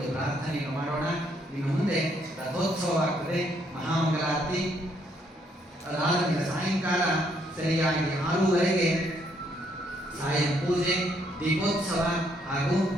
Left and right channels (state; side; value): normal; both; correlation 0.71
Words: ಪ್ರಾರ್ಥನೆಯನ್ನು ಮಾಡೋಣ. ಇನ್ನು ಮುಂದೆ ರಥೋತ್ಸವ ಆಗ್ತದೆ, ಮಹಾಮಂಗಲಾರತಿ. ಅದಾದ ಮೇಲೆ ಸಾಯಂಕಾಲ ಸರಿಯಾಗಿ 6:30ಗೆ ಸಾಯಂ ಪೂಜೆ, ದೀಪೋತ್ಸವ ಹಾಗೂ